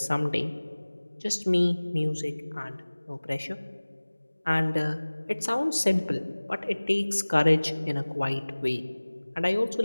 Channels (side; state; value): both; inverted; correlation -1.00